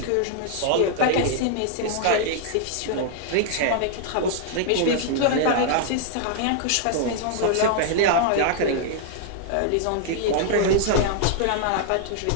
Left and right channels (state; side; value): different; both; correlation -0.01